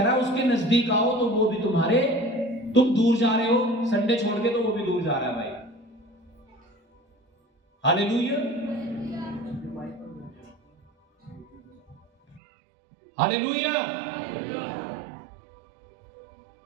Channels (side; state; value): left; drops out; at 12.4 s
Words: रहा है उसके नजदीक आओ तो वो भी तुम्हारे, तुम दूर जा रहे हो संडे छोड़ के, तो वो भी दूर जा रहा है भाई। हालेलुया, हालेलुया,